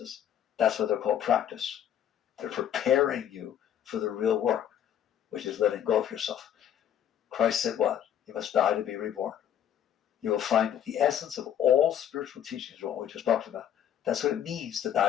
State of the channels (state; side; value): quieter; right; 9.9 dB